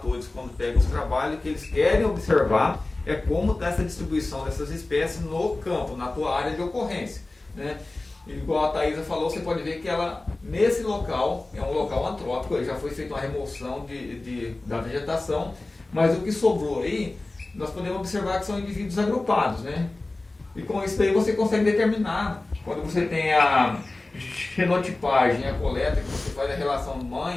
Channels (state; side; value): quieter; right; 3.0 dB